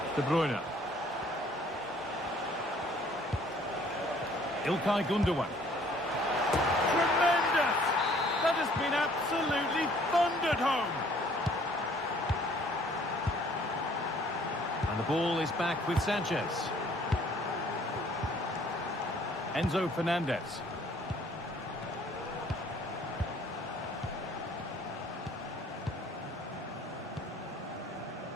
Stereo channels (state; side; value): normal; both; correlation 0.58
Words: De Bruyne. Ilkay Gundogan. Tremendous! That has been absolutely thundered home. The ball is back with Sanchez. Enzo Fernandez.